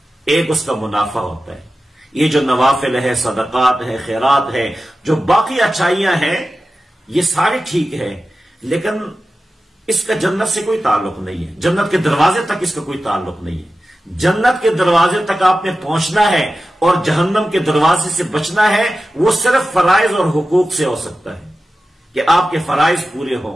ایک اس کا منافع ہوتا ہے، یہ جو نوافل ہے، صدقات ہے، خیرات ہے، جو باقی اچھائیاں ہیں، یہ ساری ٹھیک ہے، لیکن اس کا جنت سے کوئی تعلق نہیں ہے، جنت کے دروازے تک اس کا کوئی تعلق نہیں ہے۔ جنت کے دروازے تک آپ نے پہنچنا ہے اور جہنم کے دروازے سے بچنا ہے، وہ صرف فرائض اور حقوق سے ہو سکتا ہے کہ آپ کے فرائض پورے ہوں،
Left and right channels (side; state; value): both; normal; correlation 0.94